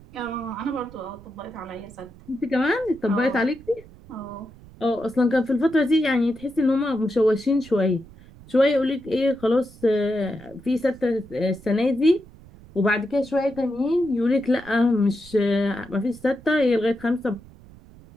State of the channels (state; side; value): noise; right; rumble, 22 dB below the sound